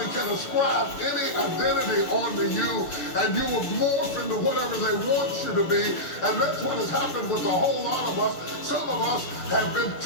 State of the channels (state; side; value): late; right; 6.6 ms